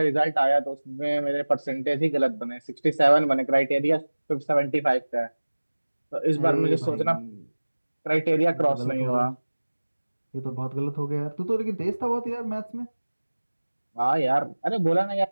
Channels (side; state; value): both; inverted; correlation -1.00